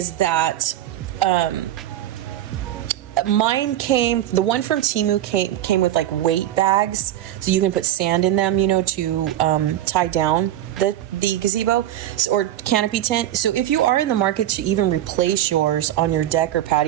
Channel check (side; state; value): left; quieter; 12.7 dB